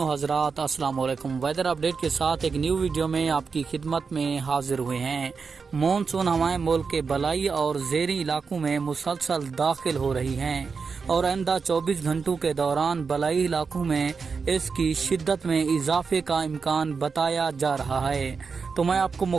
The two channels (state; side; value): quieter; left; 5.2 dB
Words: हज़रात, अस्सलाम वालेकुम। वेदर अपडेट के साथ एक न्यू वीडियो में आपकी खिदमत में हाजिर हुए हैं। मानसून हवाएं मुल्क के बलाई और ज़ेरी इलाकों में मुसलसल दाखिल हो रही हैं और आइंदा 24 घंटों के दौरान बलाई इलाकों में इसकी शिद्दत में इजाफे का इम्कान बताया जा रहा है। तो मैं आपको